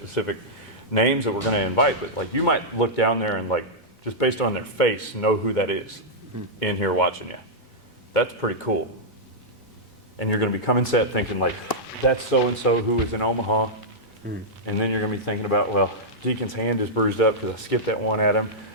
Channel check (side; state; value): both; normal; correlation -0.08